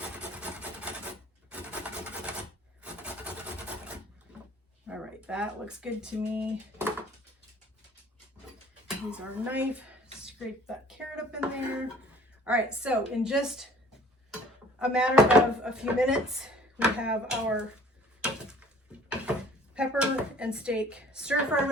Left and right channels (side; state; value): both; normal; correlation 0.52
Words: All right, that looks good to me. Use our knife, scrape that carrot up in there. All right, so in just a matter of a few minutes, we have our pepper and steak stir fry